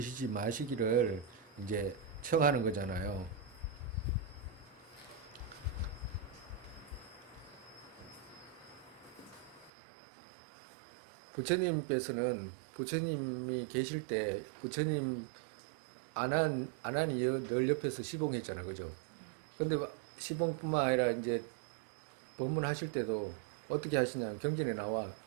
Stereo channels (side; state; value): left; drops out; at 9.7 s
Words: 마시기를 이제 청하는 거잖아요. 부처님께서는 부처님이 계실 때 부처님 안한이 늘 옆에서 시봉했잖아요. 그죠? 근데 시봉뿐만 아니라 이제 법문하실 때도 어떻게 하시냐면 경전에 나와